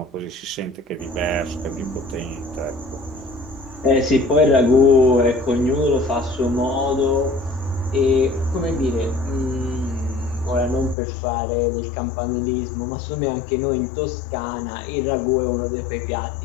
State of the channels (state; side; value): drops out; right; at 11.0 s